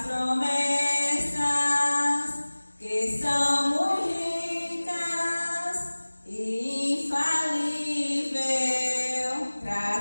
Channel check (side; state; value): both; inverted; correlation -1.00